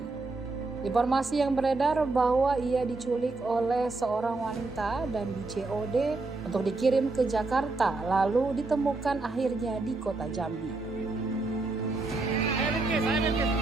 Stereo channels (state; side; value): quieter; left; 3.4 dB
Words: Informasi yang beredar bahwa ia diculik oleh seorang wanita dan di-COD untuk dikirim ke Jakarta, lalu ditemukan akhirnya di kota Jambi. Saya Bilqis.